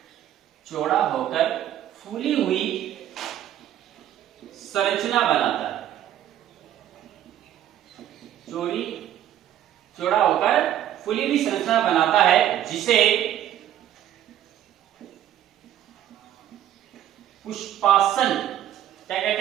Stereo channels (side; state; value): left; quieter; 11.6 dB